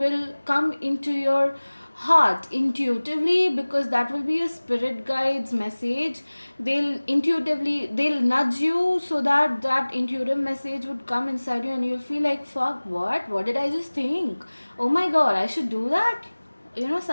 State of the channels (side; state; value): both; inverted; correlation -1.00